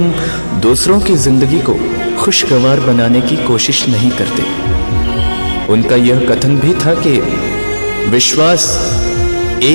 दूसरों की जिंदगी को खुशगवार बनाने की कोशिश नहीं करते। उनका यह कथन भी था कि विश्वास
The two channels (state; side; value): inverted; both; correlation -1.00